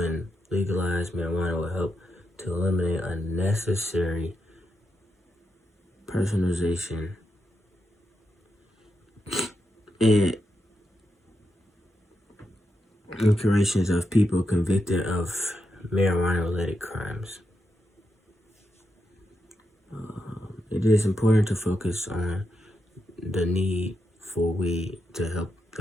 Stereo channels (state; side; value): normal; both; correlation 0.85